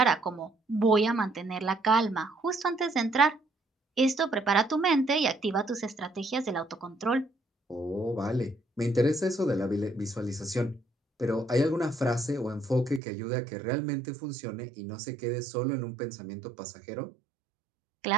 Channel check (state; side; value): drops out; left; at 13.0 s